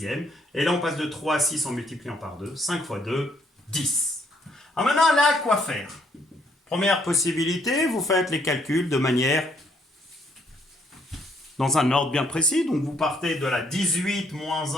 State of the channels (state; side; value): normal; both; correlation 0.69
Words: Et là, on passe de 3 à 6 en multipliant par 2. 5 fois 2, 10. Alors maintenant, là, quoi faire? Première possibilité, vous faites les calculs de manière dans un ordre bien précis. Donc, vous partez de la 18 moins